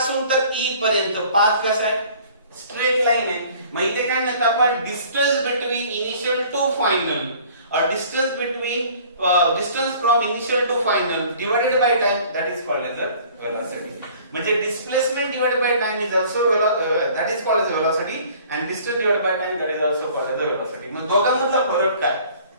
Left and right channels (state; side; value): inverted; both; correlation -0.51